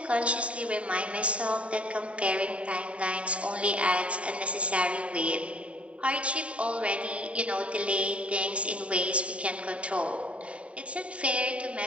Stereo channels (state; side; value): late; left; 0.064 ms